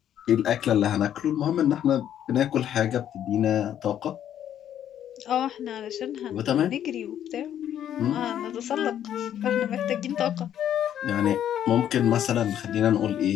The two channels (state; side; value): quieter; right; 10.4 dB